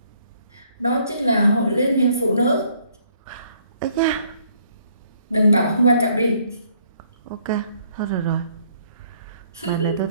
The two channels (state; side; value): inverted; both; correlation -0.66